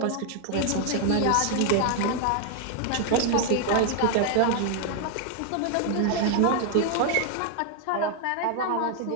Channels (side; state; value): both; different; correlation 0.00